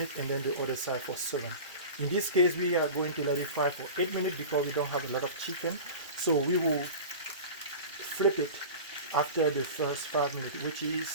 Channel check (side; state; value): both; inverted; correlation -0.33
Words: and then the other side for 7. In this case, we are going to let it fry for 8 minutes because we don't have a lot of chicken. So we will flip it after the first 5 minutes, which